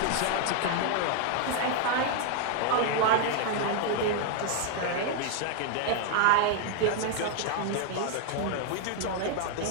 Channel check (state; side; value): different; both; correlation 0.00